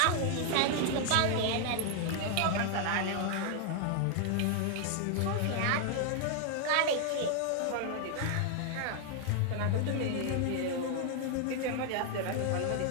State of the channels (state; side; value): different; both; correlation 0.00